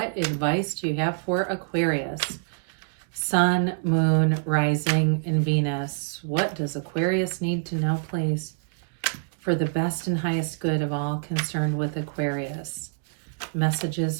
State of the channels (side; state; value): left; silent; digital silence